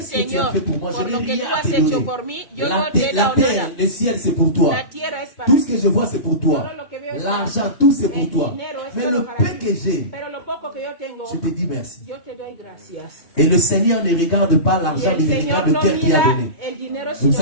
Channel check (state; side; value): late; right; 2.2 ms